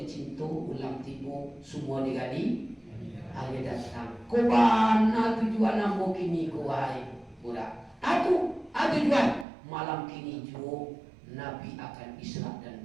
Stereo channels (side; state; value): left; drops out; at 9.5 s